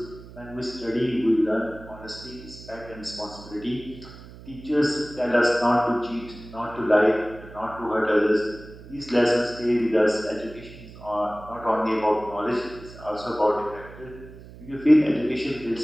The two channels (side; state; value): right; noise; hum, 17 dB below the sound